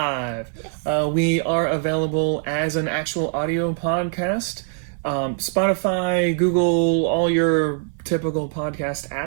We are available as an actual audio podcast. Spotify, Google, all your typical podcast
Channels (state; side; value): silent; left; 62 dB below the other